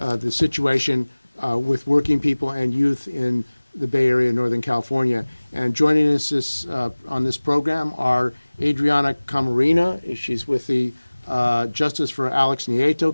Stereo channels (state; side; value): inverted; both; correlation -1.00